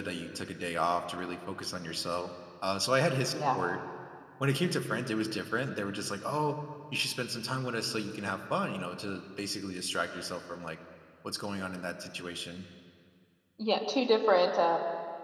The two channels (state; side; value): identical; both; correlation 1.00